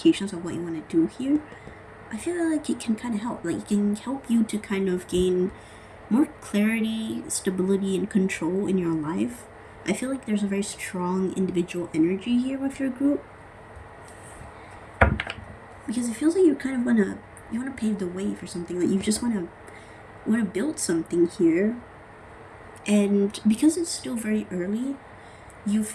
of what you want to do here, I feel like it can kind of help. Like, it can help you to kind of gain more clarity, stability, and control in your life. I feel like there's a very strong individual energy here with your group, because it feels like you kind of want to pave the way for something. Like, you just want to build something here, and because it's still very early, you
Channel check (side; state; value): both; identical; correlation 1.00